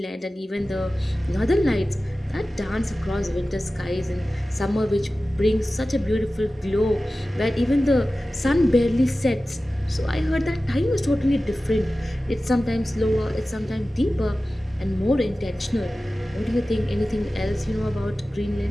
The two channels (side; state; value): both; normal; correlation 0.96